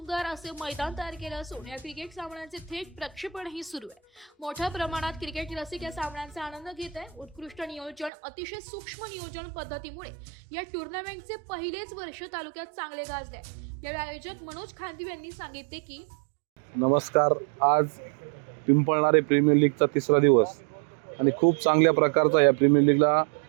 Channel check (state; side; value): drops out; left; at 8.1 s